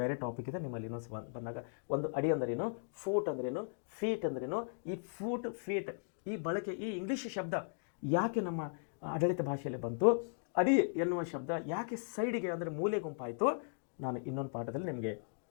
ಟಾಪಿಕ್ ಇದೆ ನಿಮ್ಮಲ್ಲಿ ಇನ್ನೊಂದು ಬಂದಾಗ. ಒಂದು ಅಡಿ ಅಂದ್ರೇನು, ಫೂಟ್ ಅಂದ್ರೇನು, ಫೀಟ್ ಅಂದ್ರೇನು. ಈ ಫೂಟ್ ಫೀಟ್ ಈ ಬಳಕೆ, ಈ ಇಂಗ್ಲಿಷ್ ಶಬ್ದ ಯಾಕೆ ನಮ್ಮ ಆಡಳಿತ ಭಾಷೆಯಲ್ಲಿ ಬಂತು, ಅಡಿ ಎನ್ನುವ ಶಬ್ದ ಯಾಕೆ ಸೈಡಿಗೆ ಅಂದರೆ ಮೂಲೆ ಗುಂಪಾಯಿತು, ನಾನು ಇನ್ನೊಂದು ಪಾಠದಲ್ಲಿ ನಿಮಗೆ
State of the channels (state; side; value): silent; right; digital silence